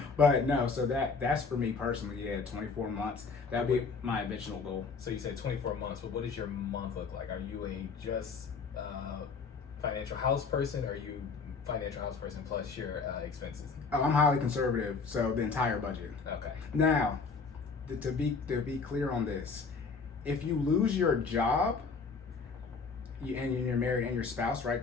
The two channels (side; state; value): right; quieter; 4.9 dB